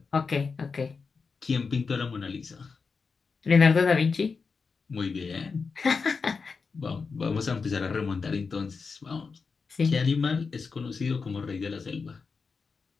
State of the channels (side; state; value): right; quieter; 4.9 dB